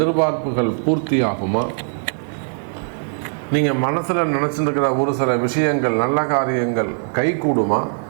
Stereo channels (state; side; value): silent; left; 65 dB below the other